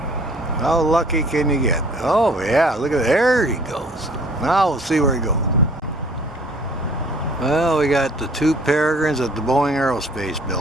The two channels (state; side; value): normal; both; correlation 0.54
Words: How lucky can you get? Oh yeah, look at there he goes. Now we'll see where he goes. Well, we got the two peregrines at the Boeing Aerospace